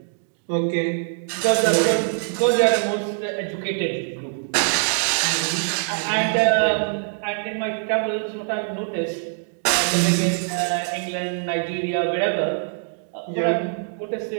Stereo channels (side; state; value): left; silent; digital silence